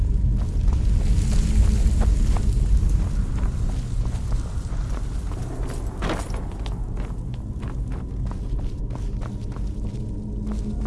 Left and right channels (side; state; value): both; identical; correlation 1.00